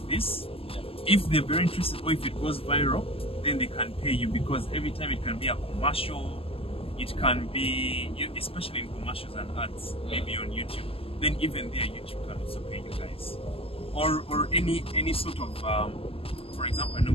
this. If they're very interested, or if it goes viral, then they can pay you, because every time it can be a commercial, it can be, especially in commercials and ads, maybe on YouTube. Then even there, YouTube can also pay you guys. Or any sort of, for example, I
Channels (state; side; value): late; right; 0.27 ms